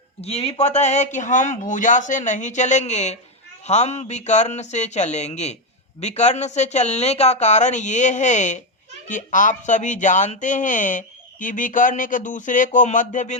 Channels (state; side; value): normal; both; correlation 0.07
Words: ये भी पता है कि हम भुजा से नहीं चलेंगे, हम विकर्ण से चलेंगे। विकर्ण से चलने का कारण ये है कि आप सभी जानते हैं कि विकर्ण एक दूसरे को मध्य